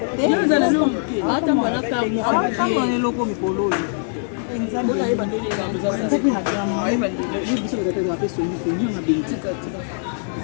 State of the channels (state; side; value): silent; right; digital silence